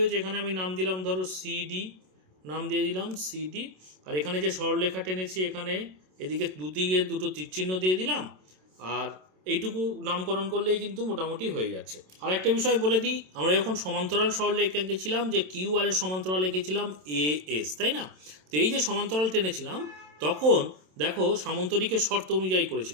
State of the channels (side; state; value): left; late; 27 ms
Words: এখানে আমি নাম দিলাম ধরো সিডি, নাম দিয়ে দিলাম সিডি, আর এখানে যে সরলরেখা টেনেছি এখানে এদিকে দুদিকে দুটো তীরচিহ্ন দিয়ে দিলাম, আর এইটুকু নামকরণ করলেই কিন্তু মোটামুটি হয়ে যাচ্ছে। আর একটা বিষয় বলে দিই, আমরা যখন সমান্তরাল সরলরেখা এঁকেছিলাম যে কিউ আর এর সমান্তরাল এঁকেছিলাম এ এস, তাই না? তো এই যে সমান্তরাল টেনেছিলাম তখন দেখো সামান্তরিকের শর্ত অনুযায়ী